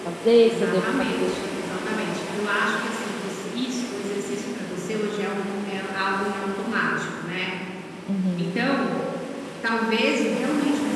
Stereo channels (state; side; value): identical; both; correlation 1.00